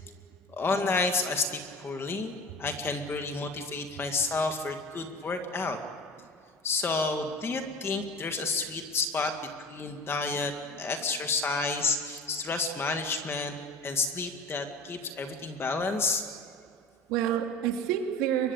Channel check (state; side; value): normal; both; correlation 0.36